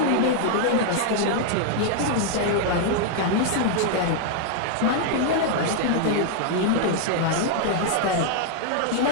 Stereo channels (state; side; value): different; both; correlation 0.00